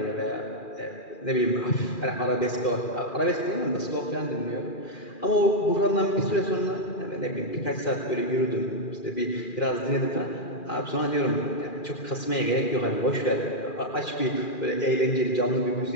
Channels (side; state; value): right; late; 2.4 ms